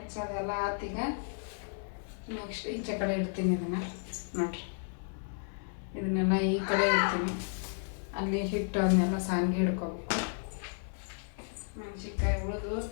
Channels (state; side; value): silent; right; 56 dB below the other